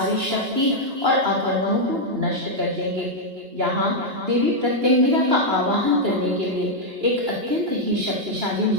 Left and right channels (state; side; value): late; left; 2.9 ms